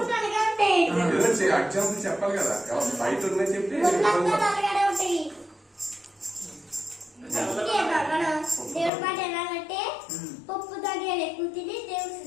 చెప్పాలి కదా బయట ఉన్నాయి చెప్పి దేవుడి మాట ఎలాగంటే పప్పు ధాన్యాలు ఎక్కువ తిని దేవుడు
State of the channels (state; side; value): drops out; right; at 8.9 s